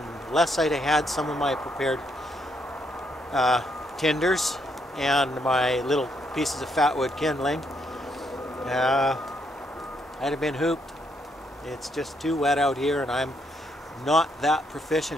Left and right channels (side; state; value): both; normal; correlation 0.75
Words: unless I'd have had some of my prepared tinders and my little pieces of fatwood kindling, I'd have been hooped. It's just too wet out here, and I'm not that